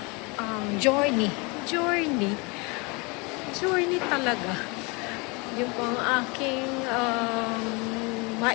journey. Journey talaga. Yun po ang aking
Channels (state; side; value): quieter; right; 28.8 dB